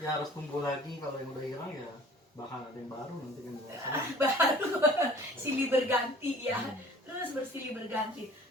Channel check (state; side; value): normal; both; correlation 0.48